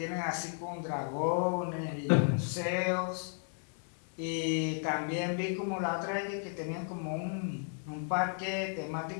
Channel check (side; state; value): right; silent; 55 dB below the other